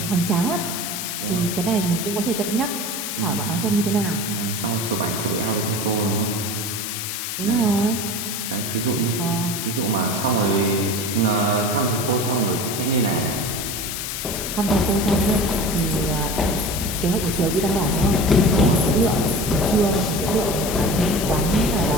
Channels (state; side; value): noise; left; hiss, 4 dB below the sound